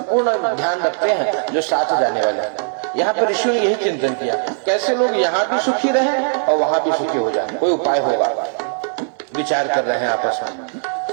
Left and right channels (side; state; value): left; silent; digital silence